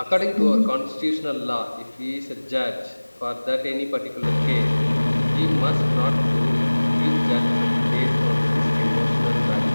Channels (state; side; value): inverted; both; correlation -1.00